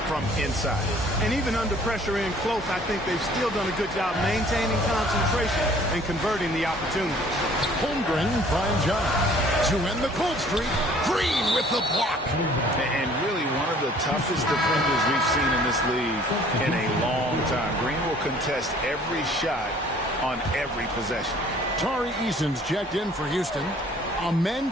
from inside. And even under pressure in close, I think they've still done a good job maintaining concentration and converting the opportunities. Holmgren finds John to end the cold streak. Green with the block. And really one of the toughest defenders we've seen in this league in a long time. Green will contest every shot on every possession. Tari Eason's checked in for Houston. Amen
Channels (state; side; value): normal; both; correlation 0.55